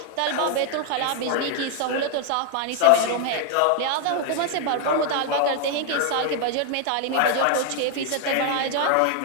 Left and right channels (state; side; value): different; both; correlation 0.00